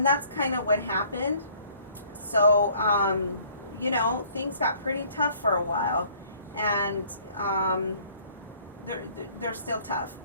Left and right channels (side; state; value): both; inverted; correlation -0.57